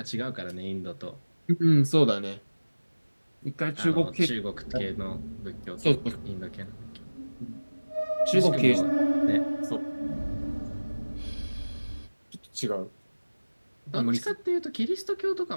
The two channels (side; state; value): both; inverted; correlation -1.00